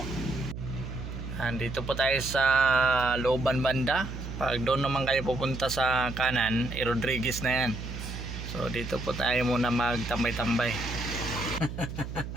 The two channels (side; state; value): right; noise; hum, 8 dB below the sound